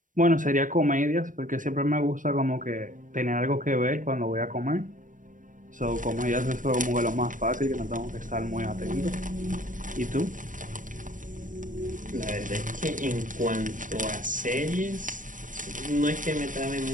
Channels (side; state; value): left; late; 0.38 ms